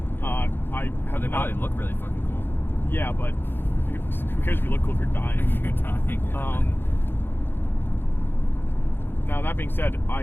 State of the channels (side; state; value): right; late; 0.10 ms